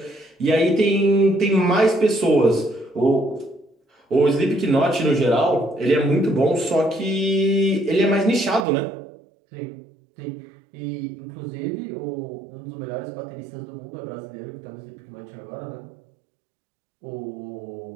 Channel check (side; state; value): left; drops out; at 8.7 s